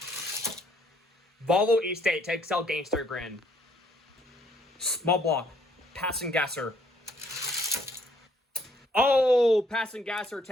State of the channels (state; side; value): normal; both; correlation 0.66